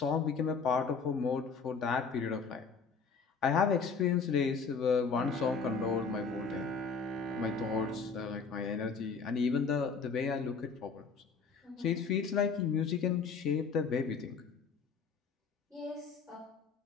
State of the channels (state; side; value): quieter; right; 5.3 dB